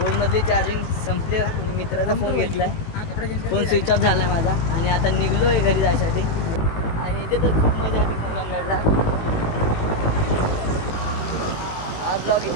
मधली चार्जिंग संपली आणि मित्राचा फोन घेतलाय फोन स्विच ऑफ झाला माझा आणि आता निघलोय घरी जायसाठी आणि इथे तर खूप मजा आली कलंगडला हा ब्लॉग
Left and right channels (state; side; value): late; right; 18 ms